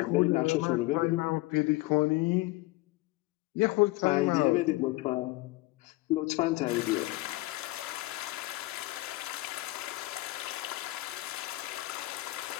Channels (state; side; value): quieter; right; 20.3 dB